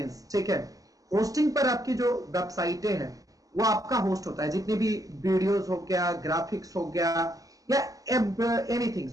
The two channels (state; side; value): late; left; 0.17 ms